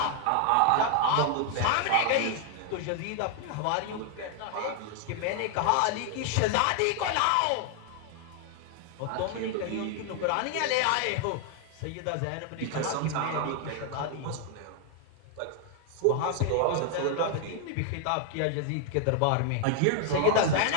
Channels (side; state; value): both; different; correlation 0.00